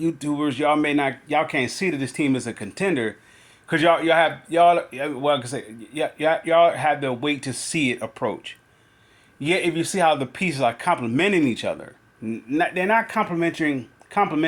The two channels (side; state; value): both; identical; correlation 1.00